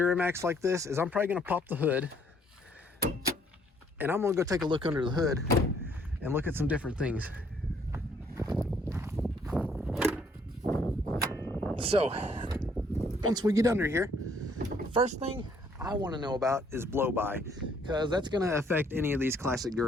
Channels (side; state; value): both; normal; correlation 0.65